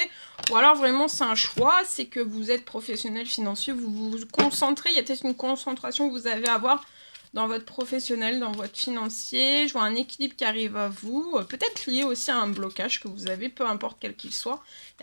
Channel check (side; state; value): both; inverted; correlation -1.00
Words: Ou alors vraiment c'est un choix, c'est que vous êtes professionnel financier, vous vous concentrez, il y a peut-être une concentration que vous avez à avoir dans votre professionnel, dans votre financier. Je vois un équilibre qui arrive à vous, peut-être lié aussi à un blocage que vous avez, peu importe quel qu'il soit. Il